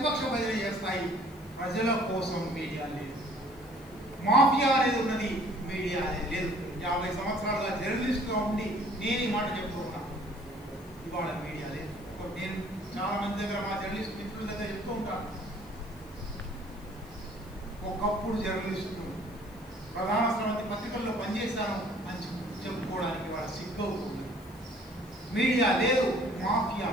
భజన చేస్తాయి. ప్రజల కోసం మీడియా లేదు. మాఫియా అనేది ఉన్నది, మీడియా అనేది లేదు. 50 సంవత్సరాలుగా జర్నలిస్ట్గా ఉండి నేను ఈ మాట చెప్తున్నా. ఇవాళ మీడియా లేదు. నేను చాలా మంది దగ్గర, మా జర్నలిస్ట్ మిత్రుల దగ్గర చెప్తూ ఉంటాను, ఒకప్పుడు జర్నలిస్టు ప్రధాన స్రవంతి పత్రికల్లో పనిచేశాను అని చెప్పుకోవడానికి వాళ్ళ సిగ్గవుతుంది. మీడియా లేదు, మాఫియా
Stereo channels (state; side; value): noise; left; hiss, 27 dB below the sound